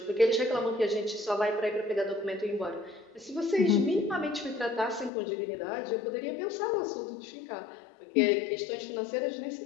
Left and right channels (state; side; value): drops out; right; at 5.1 s